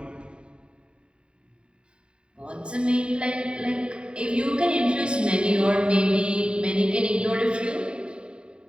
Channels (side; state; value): left; late; 0.052 ms